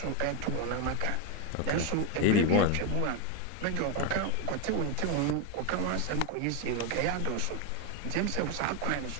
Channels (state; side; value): different; both; correlation 0.02